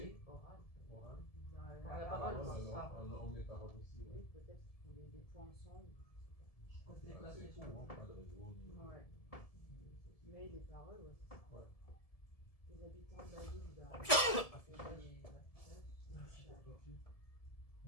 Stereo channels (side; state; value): right; late; 1.7 ms